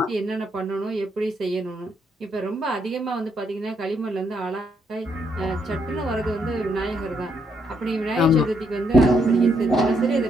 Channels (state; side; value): normal; both; correlation 0.75